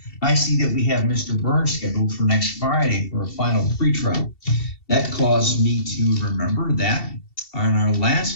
I see that we have Mr. Burns scheduled for next Friday for a final pre-trial. That caused me to remember that on our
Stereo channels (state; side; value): late; right; 2.7 ms